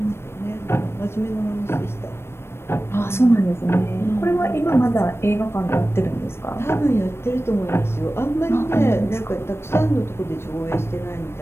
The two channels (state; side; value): late; right; 0.12 ms